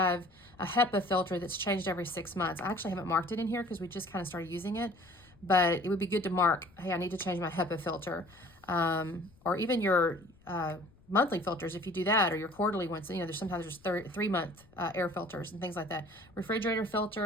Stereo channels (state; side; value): noise; left; rumble, 27 dB below the sound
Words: a HEPA filter that's changed every 6 months. I actually haven't marked it in here because we just kind of started using it, but it would be good to mark, hey, I need to change my HEPA filter. Or even your monthly filters, if you do that, or your quarterly ones. There's sometimes 3-month air filters and things like that. Refrigerator